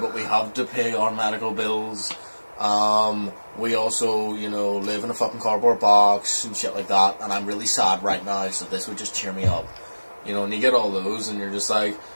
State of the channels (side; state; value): both; inverted; correlation -1.00